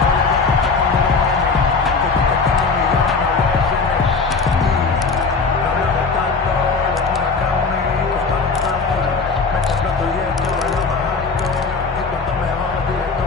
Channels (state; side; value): quieter; right; 4.5 dB